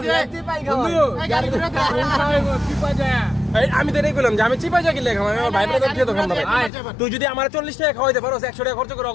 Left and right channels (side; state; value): right; drops out; at 6.7 s